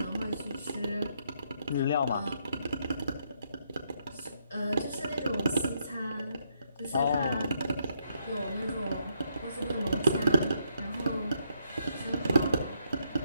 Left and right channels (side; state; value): both; inverted; correlation -0.75